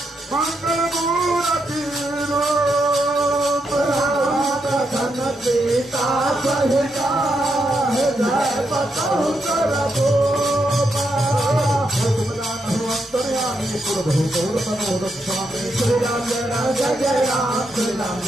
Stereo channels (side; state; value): both; normal; correlation 0.81